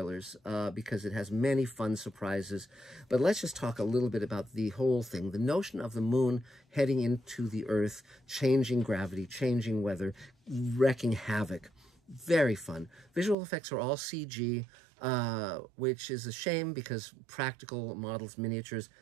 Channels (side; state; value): left; drops out; at 13.4 s